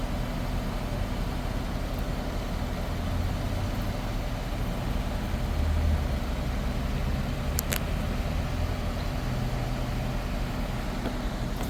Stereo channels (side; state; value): both; identical; correlation 1.00